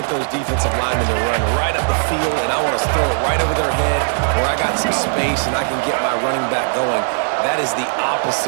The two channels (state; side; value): silent; left; digital silence